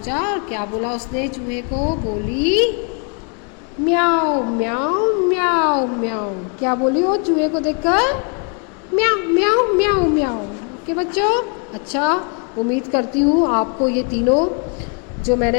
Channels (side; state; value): right; quieter; 38.6 dB